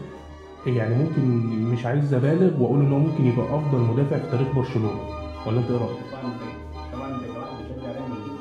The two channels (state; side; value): identical; both; correlation 1.00